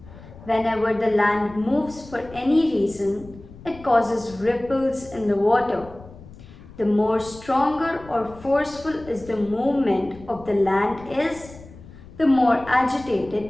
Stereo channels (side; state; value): left; noise; rumble, 19 dB below the sound